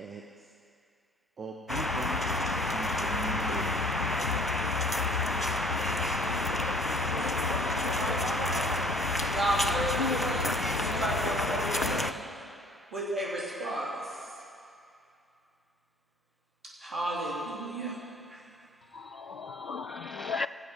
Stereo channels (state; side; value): normal; both; correlation 0.54